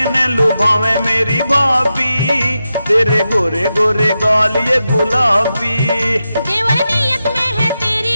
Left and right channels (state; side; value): inverted; both; correlation -0.89